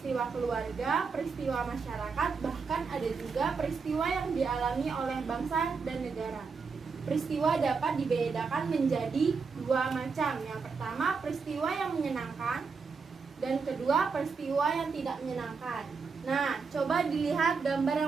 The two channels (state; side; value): quieter; left; 5.1 dB